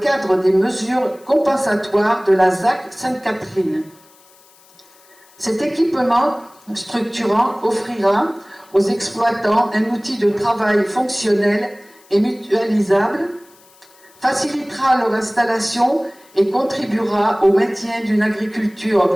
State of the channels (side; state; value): left; noise; hiss, 28 dB below the sound